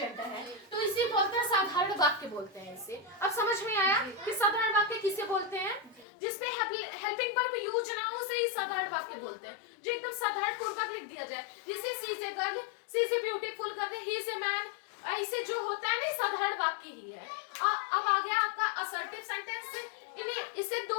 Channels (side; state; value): right; drops out; at 6.1 s